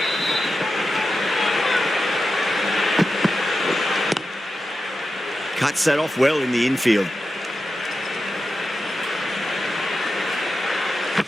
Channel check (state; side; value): normal; both; correlation 0.91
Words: Cuts that off well in the infield.